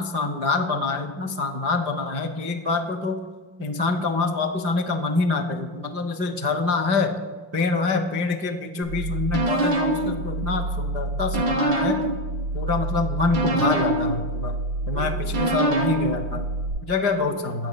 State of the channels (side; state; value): left; late; 5.7 ms